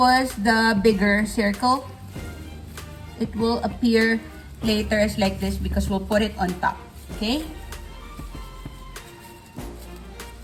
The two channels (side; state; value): both; identical; correlation 1.00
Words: the bigger circle. It will appear later as like this because we'll put it on top. Okay,